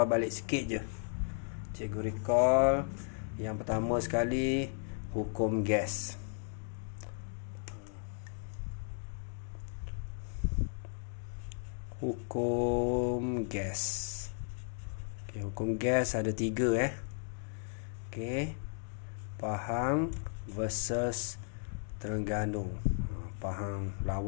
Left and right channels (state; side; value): silent; right; digital silence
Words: balik sikit je. Cikgu recall. Yang pertama sekali, hukum gas. Hukum gas. Hukum gas ada 3 Okey, Pahang versus Terengganu. Pahang